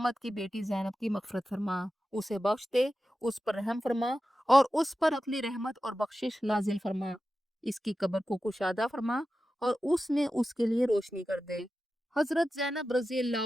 की बेटी ज़ैनब की मग़फ़िरत फरमा, उसे बख्श दे, उस पर रहम फरमा और उस पर अपनी रहमत और बख्शिश नाजिल फरमा। इसकी कब्र को कुशादा फरमा और उसमें उसके लिए रोशनी कर दे। हजरत ज़ैनब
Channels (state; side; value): normal; both; correlation 0.93